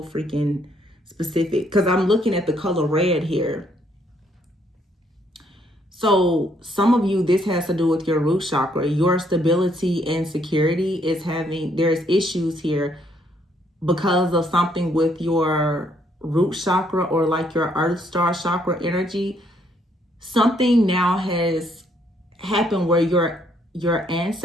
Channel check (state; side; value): normal; both; correlation 0.69